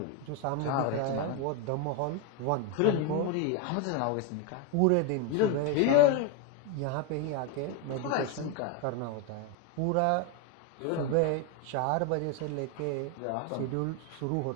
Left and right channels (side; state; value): both; different; correlation 0.01